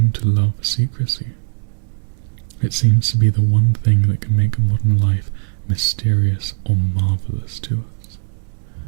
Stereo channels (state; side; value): silent; left; 67 dB below the other